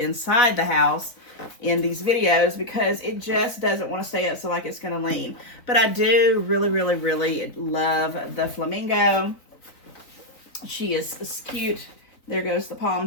the house in these videos, because it just doesn't want to stay up, so like it's going to lean. But I do really, really, really love the flamingo. She is cute. There goes the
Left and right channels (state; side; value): late; right; 3.9 ms